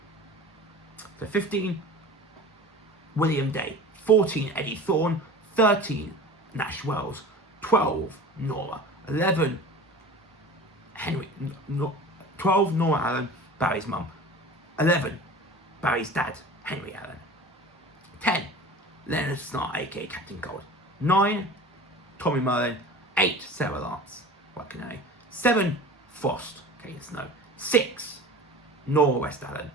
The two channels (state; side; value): normal; both; correlation 0.38